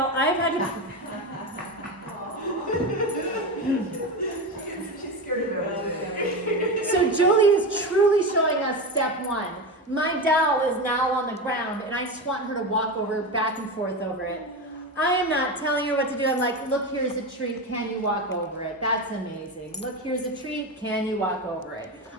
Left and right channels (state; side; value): normal; both; correlation 0.19